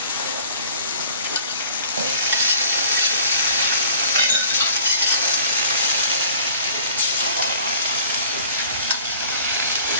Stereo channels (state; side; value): inverted; both; correlation -0.50